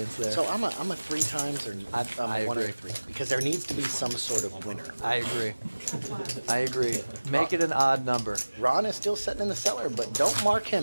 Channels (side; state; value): both; inverted; correlation -1.00